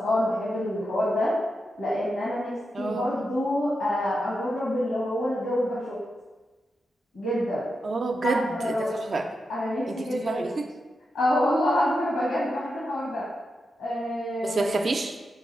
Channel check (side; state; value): both; normal; correlation 0.87